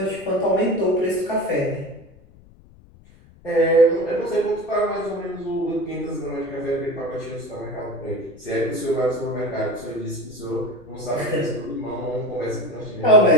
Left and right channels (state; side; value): noise; left; rumble, 24 dB below the sound